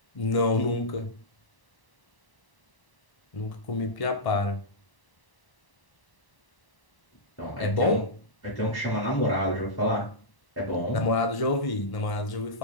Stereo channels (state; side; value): late; right; 1.0 ms